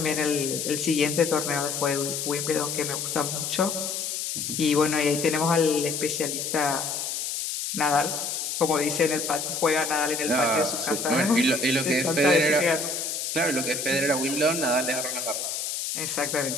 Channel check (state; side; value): noise; left; hiss, 3 dB below the sound